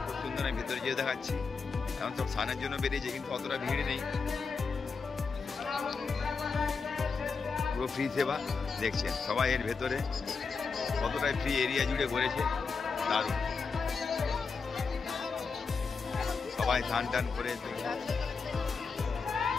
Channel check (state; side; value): quieter; right; 4.9 dB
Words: খুব সুন্দর, আমি ভেতরে যেয়ে দেখাচ্ছি। এখন সব স্নানের জন্য বেরিয়েছে, কিন্তু অতটা ভিড় নেই, পুরো ফ্রি সেবা। দেখছেন সবাই এর ভেতরে কতটাই ফ্রি এরিয়া জুড়ে ঘুরেছে, দারুণ। সবাই স্নান টান করে